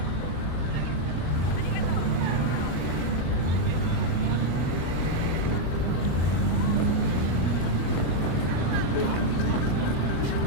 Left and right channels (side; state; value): right; late; 24 ms